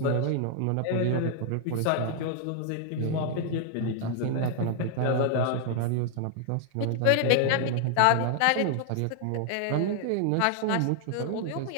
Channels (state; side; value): different; both; correlation 0.00